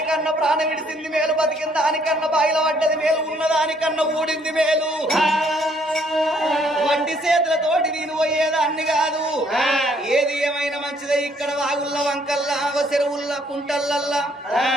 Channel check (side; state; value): both; normal; correlation 0.66